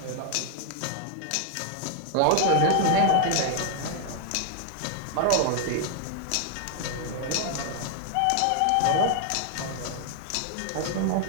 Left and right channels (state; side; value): different; both; correlation 0.00